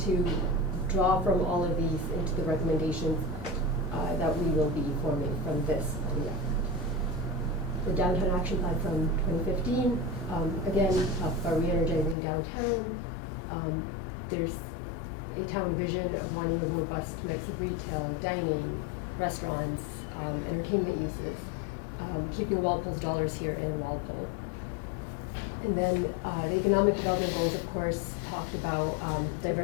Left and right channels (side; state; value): right; drops out; at 12.2 s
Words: draw from all of these into the recommendations that we will be forming from this planning effort. The downtown action plan from 2015, again, talk about re-energizing downtown. There's a town vision of wanting a robust mix of retail, dining, restaurants, entertainment uses, keeping Walpole's dollars here in Walpole. And then the economic development goals, of course, talked about